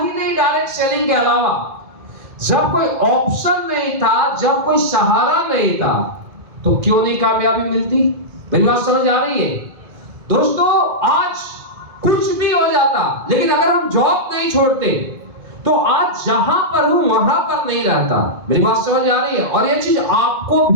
नहीं डायरेक्ट सेलिंग के अलावा। जब कोई ऑप्शन नहीं था, जब कोई सहारा नहीं था, तो क्यों नहीं कामयाबी मिलती? मेरी बात समझ आ रही है दोस्तों? आज कुछ भी हो जाता, लेकिन अगर हम जॉब नहीं छोड़ते तो आज जहां पर हूं वहां पर नहीं रहता। मेरी बात समझ आ रही है? और ये चीज आपको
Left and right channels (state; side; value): late; left; 2.4 ms